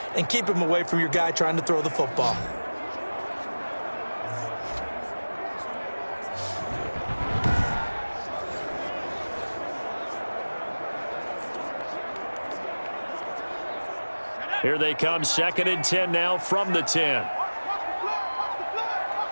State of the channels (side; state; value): both; inverted; correlation -1.00